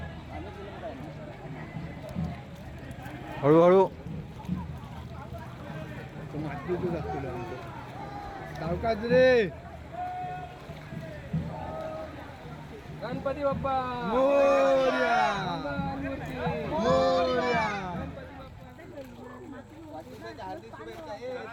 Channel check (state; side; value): identical; both; correlation 1.00